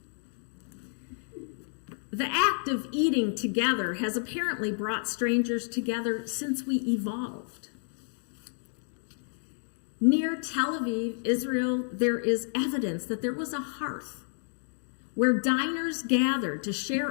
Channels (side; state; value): right; silent; digital silence